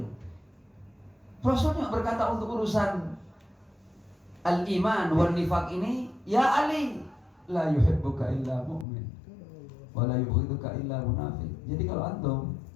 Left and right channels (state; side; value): drops out; right; at 8.8 s